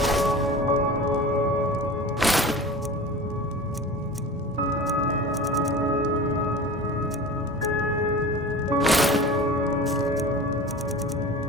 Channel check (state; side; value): normal; both; correlation 0.35